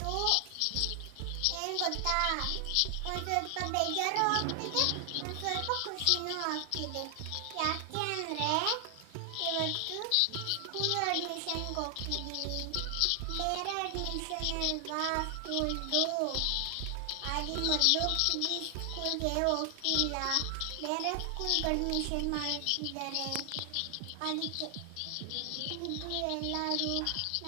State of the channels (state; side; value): different; both; correlation 0.00